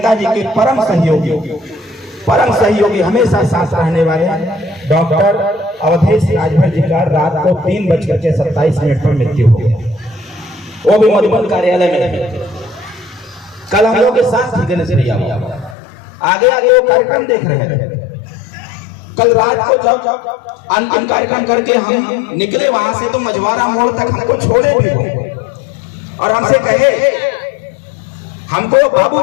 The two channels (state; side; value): drops out; right; at 15.8 s